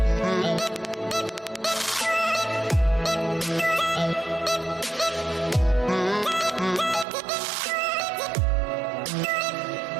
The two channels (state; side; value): drops out; left; at 7.1 s